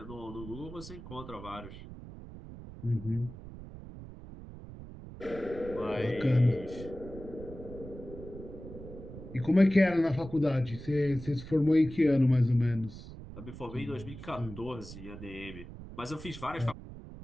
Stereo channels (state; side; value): noise; right; rumble, 13 dB below the sound